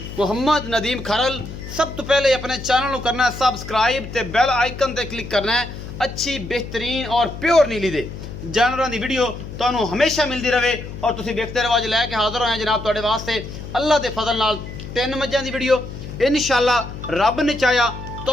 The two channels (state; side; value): noise; left; hum, 10 dB below the sound